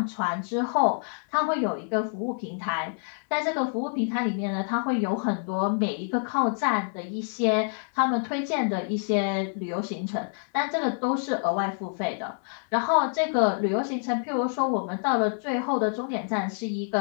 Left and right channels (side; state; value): right; silent; 60 dB below the other